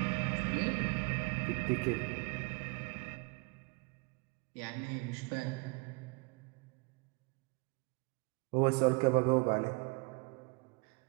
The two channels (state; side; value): quieter; left; 29.6 dB